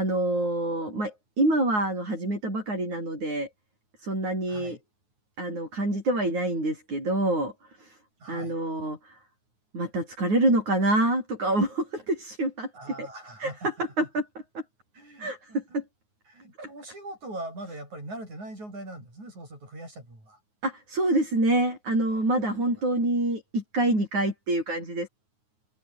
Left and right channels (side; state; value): left; late; 9.5 ms